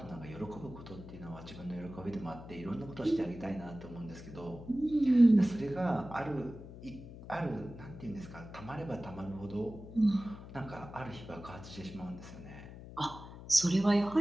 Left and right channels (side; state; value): left; noise; hum, 14 dB below the sound